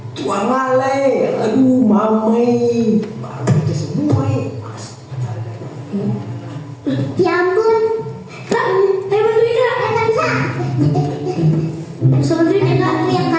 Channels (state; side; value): identical; both; correlation 1.00